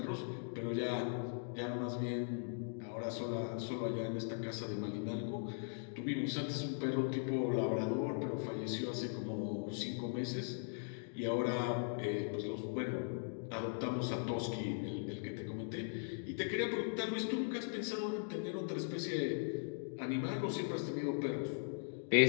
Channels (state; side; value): silent; right; digital silence